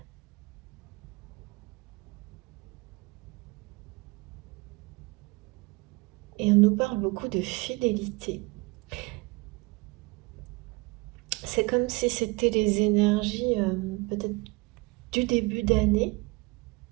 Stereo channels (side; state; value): left; quieter; 25.2 dB